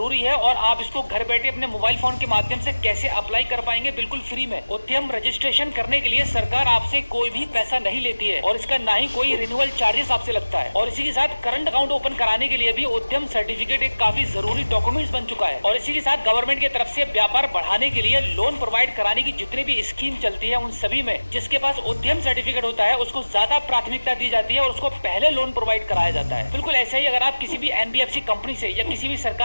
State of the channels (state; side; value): inverted; both; correlation -1.00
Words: है, और आप इसको घर बैठे अपने मोबाइल फोन के माध्यम से कैसे अप्लाई कर पाएंगे बिल्कुल फ्री में। उद्यम रजिस्ट्रेशन करने के लिए सरकार आपसे कोई भी पैसा नहीं लेती है, और इसका ना ही कोई रिन्यूअल चार्जेस आपसे लगता है। और इसी के साथ करंट अकाउंट ओपन कराने के लिए भी उद्यम सर्टिफिकेट एक काफी जरूरी डॉक्यूमेंट्स बन चुका है। और इसी के साथ गवर्नमेंट की तरफ से व्यापार बढ़ाने के लिए लोन प्रोवाइड कराने की जितनी भी स्कीम चलती है उन सभी में जिसके पास उद्यम सर्टिफिकेट होता है उसको ज्यादा प्राथमिकता दी जाती है और उसको पहले लोन प्रोवाइड कराया जाता है। बिल्कुल ऐसा ही अगर आप किसी भी एनबीएफसी कंपनी से या किसी भी